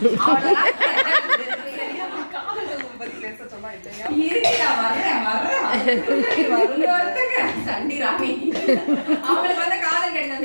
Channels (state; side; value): inverted; both; correlation -1.00